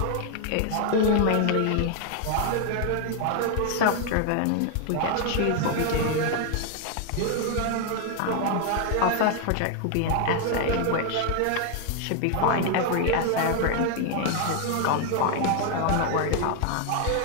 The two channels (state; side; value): different; both; correlation 0.00